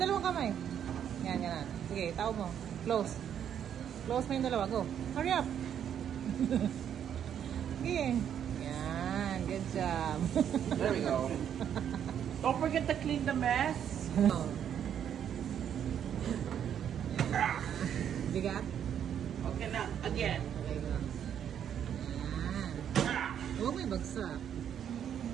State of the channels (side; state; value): left; quieter; 9.2 dB